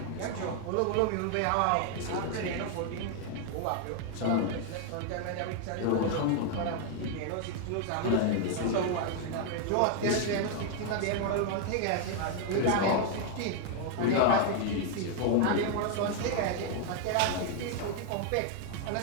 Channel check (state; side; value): different; both; correlation 0.00